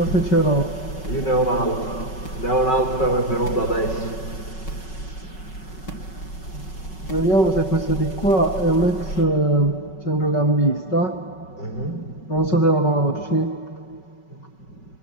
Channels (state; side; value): late; right; 5.3 ms